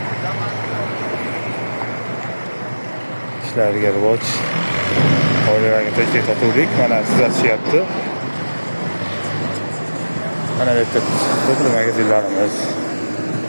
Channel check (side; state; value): both; inverted; correlation -1.00